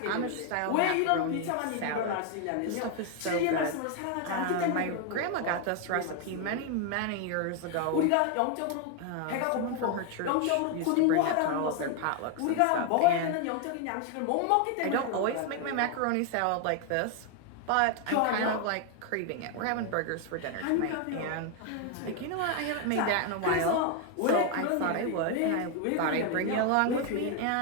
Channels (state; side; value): different; both; correlation 0.01